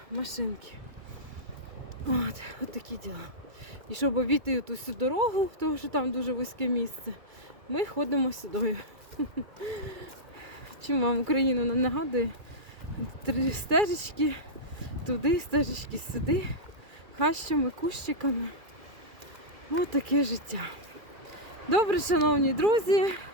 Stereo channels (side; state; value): left; late; 2.3 ms